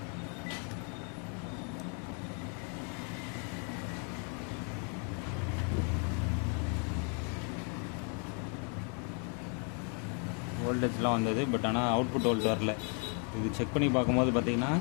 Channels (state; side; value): quieter; right; 39.8 dB